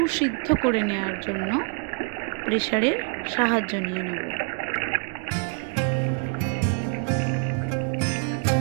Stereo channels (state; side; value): quieter; left; 38.3 dB